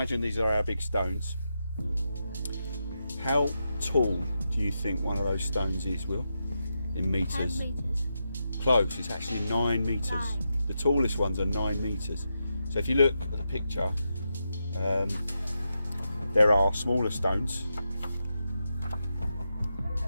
these are our big stones. How tall do you think one of those stones is, Will? In meters? 10 meters. Close, it's actually 9 meters. 9. The tallest ones are 9 meters. So if you look at the picture, there are smaller stones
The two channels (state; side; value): inverted; both; correlation -0.86